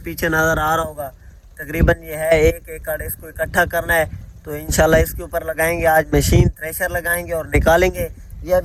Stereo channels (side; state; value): both; identical; correlation 1.00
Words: नज़र आ रहा होगा तकरीबन ये है 1 एकड़। इसको इकट्ठा करना है तो इंशाल्लाह इसके ऊपर लगाएंगे आज मशीन, थ्रेशर लगाएंगे और निकालेंगे। ये